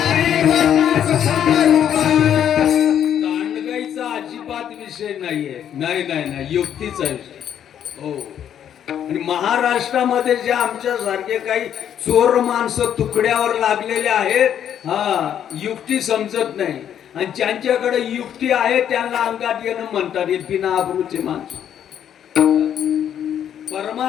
नाही, युक्तीचा विषय. हो. आणि महाराष्ट्रामध्ये जे आमच्या सारखे काही चोर माणसं तुकड्यावर लागलेले आहेत, युक्ती समजत नाही. आणि ज्यांच्याकडे युक्ती आहे त्यांना अंगात येणं म्हणतात. हे बिना आबरूचे माणसं.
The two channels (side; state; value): right; quieter; 9.6 dB